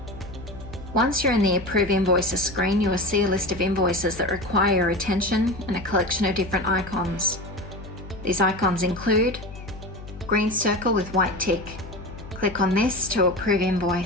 Once you're in the Approve Invoices screen, you will see a list of invoices that require your attention and a collection of different icons. These icons include green circle with white tick. Click on this to approve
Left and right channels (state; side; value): noise; left; hum, 14 dB below the sound